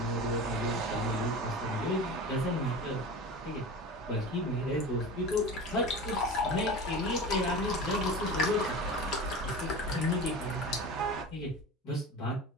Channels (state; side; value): normal; both; correlation 0.32